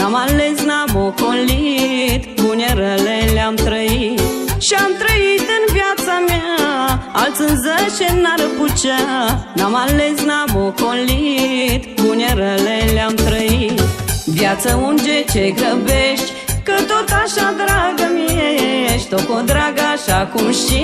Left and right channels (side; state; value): both; identical; correlation 1.00